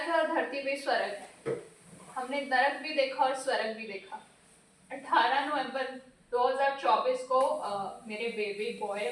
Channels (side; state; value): both; identical; correlation 1.00